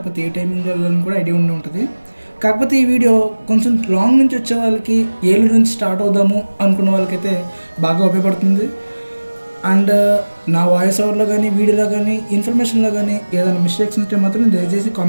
ఏ టైమింగ్ వెళ్ళాలని కూడా ఐడియా ఉండే ఉంటుంది. కాకపోతే ఈ వీడియో కొంచెం లాంగ్ నుంచి వచ్చే వాళ్ళకి, ఏలూరు నుంచి స్టార్ట్ అవుదాము అనుకున్న వాళ్ళకైతే బాగా ఉపయోగపడుతుంది. అండ్ నా వాయిస్ ఓవర్లో కానీ, వీడియోలో కానీ, ఇన్ఫర్మేషన్లో కానీ ఏదైనా మిస్టేక్స్ ఉంటే మాత్రం దయచేసి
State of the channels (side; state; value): both; inverted; correlation -1.00